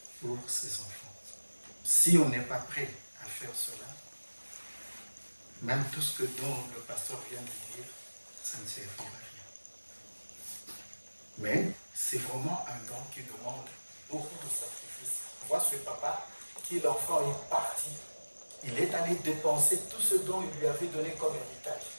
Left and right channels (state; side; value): inverted; both; correlation -1.00